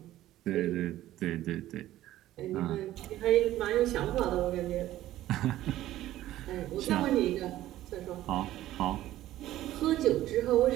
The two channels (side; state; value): left; quieter; 14.3 dB